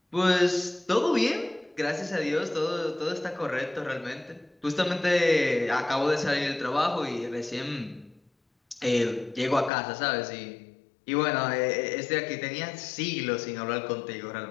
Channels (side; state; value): right; drops out; at 9.7 s